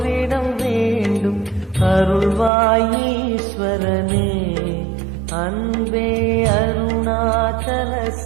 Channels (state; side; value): drops out; left; at 2.5 s